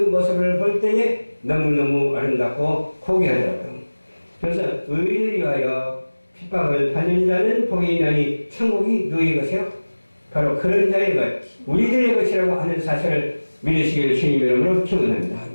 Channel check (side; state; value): both; inverted; correlation -1.00